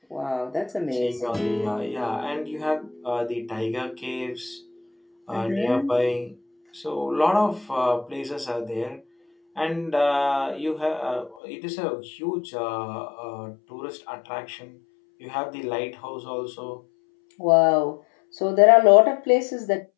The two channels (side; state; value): right; drops out; at 11.4 s